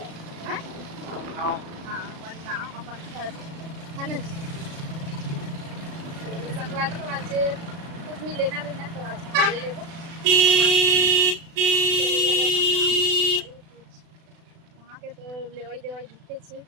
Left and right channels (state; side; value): late; left; 36 ms